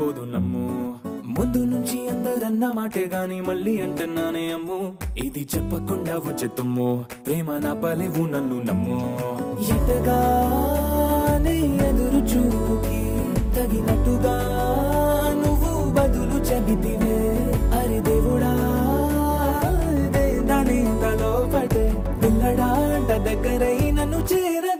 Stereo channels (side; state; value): both; identical; correlation 1.00